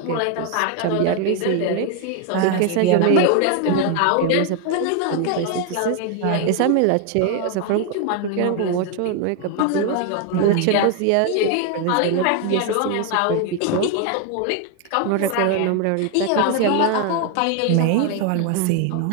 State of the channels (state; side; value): different; both; correlation 0.01